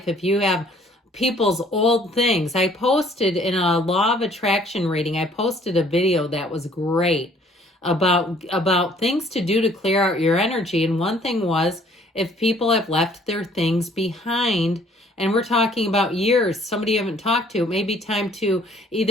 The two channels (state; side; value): normal; both; correlation 0.59